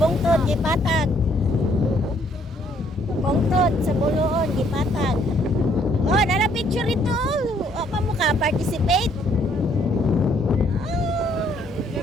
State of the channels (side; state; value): both; normal; correlation 0.66